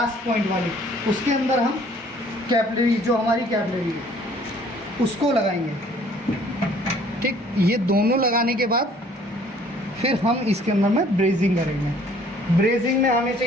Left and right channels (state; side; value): normal; both; correlation 0.57